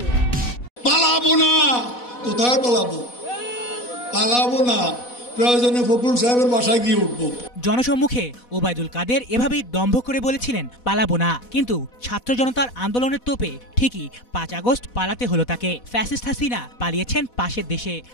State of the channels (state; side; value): late; right; 4.1 ms